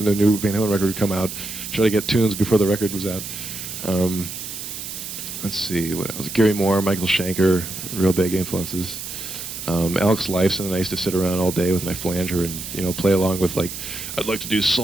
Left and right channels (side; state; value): right; noise; hiss, 8 dB below the sound